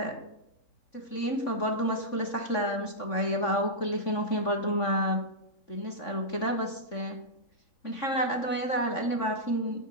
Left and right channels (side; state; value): right; late; 3.5 ms